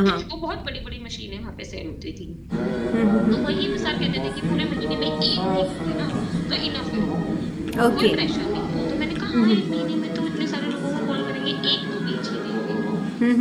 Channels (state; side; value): identical; both; correlation 1.00